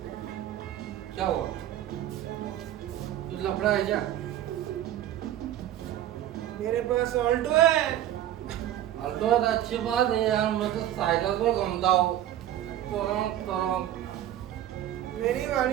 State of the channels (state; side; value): quieter; left; 12.2 dB